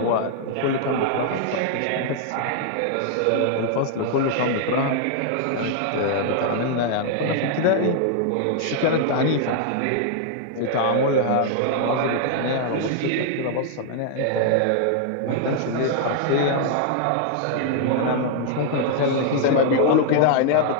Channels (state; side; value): different; both; correlation -0.01